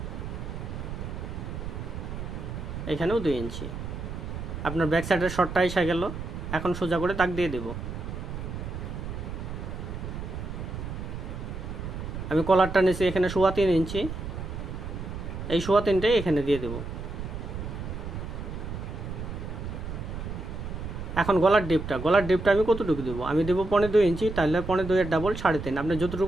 এখানেও 2 ইঞ্চি। আপনার ব্যাক সাইডের শর্টটা এসে গেল, এখন সোজা করে দাগ দিয়ে দেব। আমি কলারটা নিচ্ছি এখানে 3.25 ইঞ্চি, এই 3.25টাই এখানে দিয়ে দেব। এখন গলার ডিপটা আমি কতটুকু দেবো, আমি দেবো 2.25 ইঞ্চি, তাহলে 2.25 এর ডাবল 3.5। আপনি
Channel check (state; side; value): noise; right; rumble, 7 dB below the sound